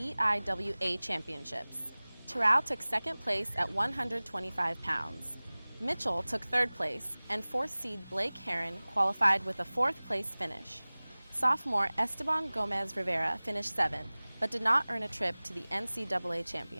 Championships. Terao took second place at 125 pounds. Mitchell took third place, and 4th seed Blake Herron qualified with a 4th place finish. Sophomore Esteban Gomez Rivera finished 7th, but did not earn a trip to the NCAA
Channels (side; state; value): both; inverted; correlation -0.99